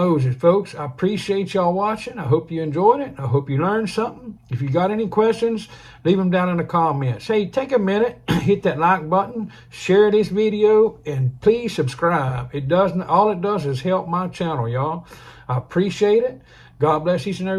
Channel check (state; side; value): identical; both; correlation 1.00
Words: folks, I appreciate y'all watching. I hope you enjoyed it. I hope you learned something. If you got any questions, leave them down in the comments. Hey, take a minute, hit that like button, share this video, and please subscribe. All it does is help my channel, y'all. I appreciate it. God bless each and